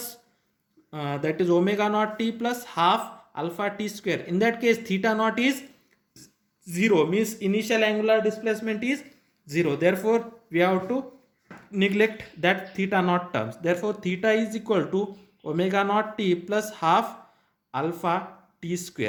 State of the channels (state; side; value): identical; both; correlation 1.00